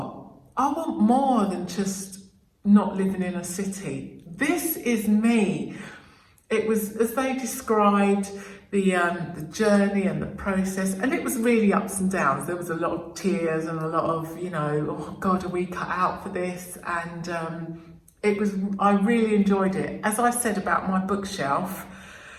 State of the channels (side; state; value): both; identical; correlation 1.00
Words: I want more than just not living in a city. This is me. It was, as they described, the journey and the process, and it was really ups and downs. There was a lot of tears and a lot of, oh God, are we cut out for this? And I really enjoyed it. As I said about my bookshelf,